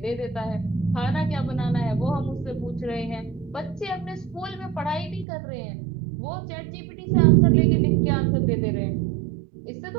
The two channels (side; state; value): left; drops out; at 5.2 s